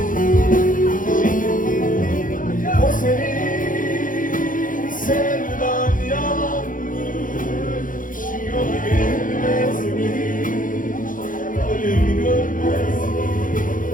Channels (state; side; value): late; right; 0.39 ms